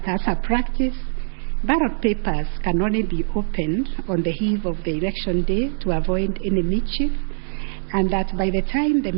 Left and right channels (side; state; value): left; silent; digital silence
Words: as a practice, ballot papers can only be opened on the eve of the election day to avoid any mischief, and that by the time the